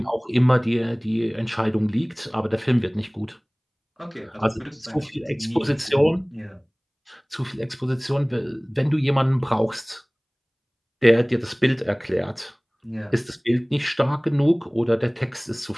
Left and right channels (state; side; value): identical; both; correlation 1.00